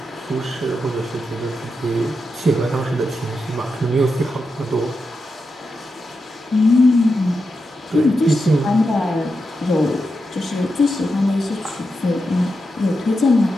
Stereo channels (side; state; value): both; normal; correlation 0.87